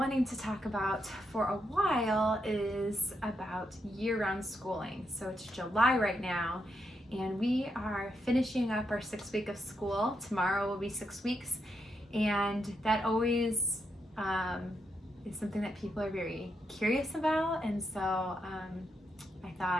to talk about for a while is about year-round schooling. So it's July right now, and we are finishing up our 6 week of school. Tomorrow will be 6 weeks, and that always is something that people are very curious about, and so I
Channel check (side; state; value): both; normal; correlation 0.81